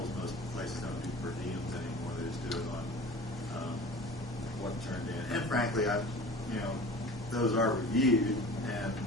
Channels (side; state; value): both; normal; correlation 0.40